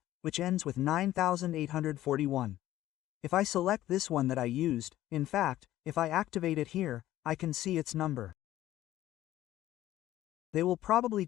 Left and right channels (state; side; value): quieter; right; 14.2 dB